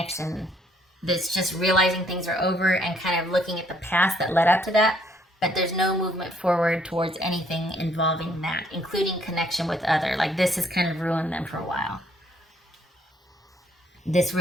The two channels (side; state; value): both; normal; correlation 0.66